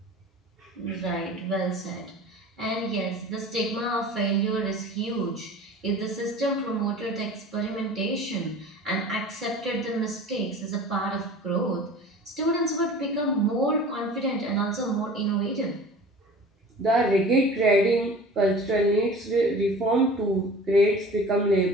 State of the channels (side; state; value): both; normal; correlation 0.41